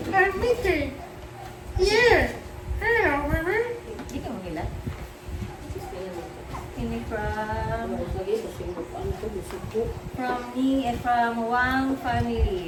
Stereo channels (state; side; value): identical; both; correlation 1.00